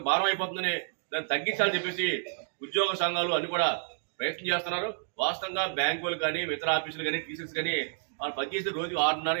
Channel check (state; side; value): silent; left; digital silence